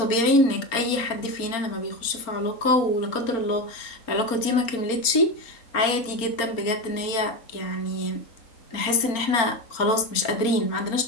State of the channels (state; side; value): late; right; 4.3 ms